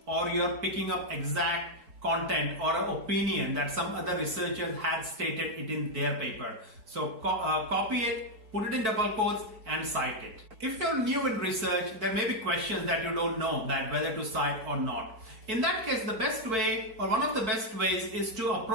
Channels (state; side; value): late; left; 4.6 ms